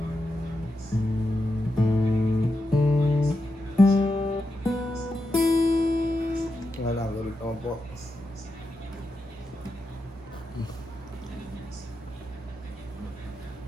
Wala, galit naman po.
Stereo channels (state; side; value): normal; both; correlation 0.87